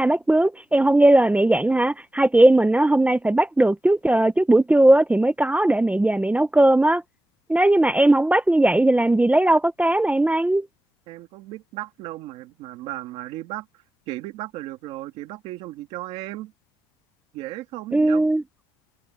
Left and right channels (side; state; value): both; normal; correlation 0.96